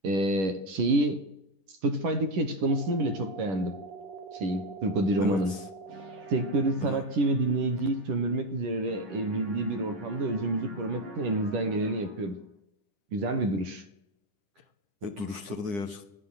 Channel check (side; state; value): left; late; 9.9 ms